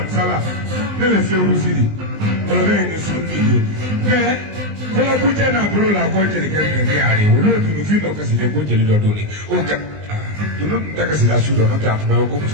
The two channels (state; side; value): late; left; 19 ms